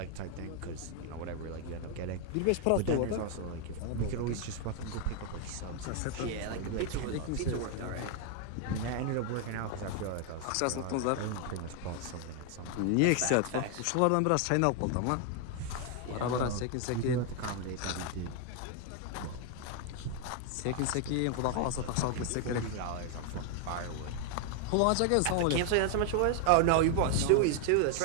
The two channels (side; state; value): both; different; correlation 0.00